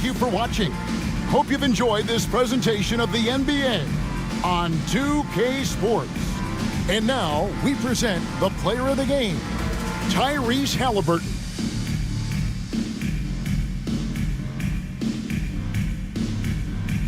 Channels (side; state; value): both; identical; correlation 1.00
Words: you for watching. Hope you've enjoyed this presentation of the NBA on 2K Sports. And now, we present the player of the game, Tyrese Halliburton.